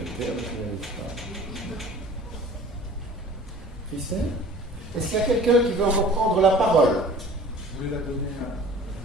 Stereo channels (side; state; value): both; normal; correlation 0.46